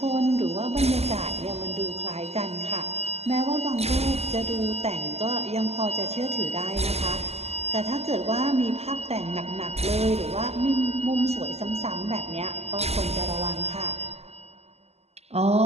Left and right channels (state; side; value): late; left; 0.30 ms